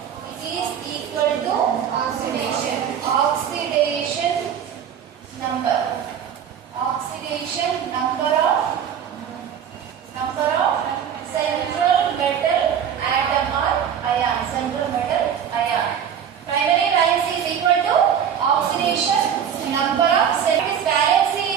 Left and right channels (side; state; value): left; quieter; 8.5 dB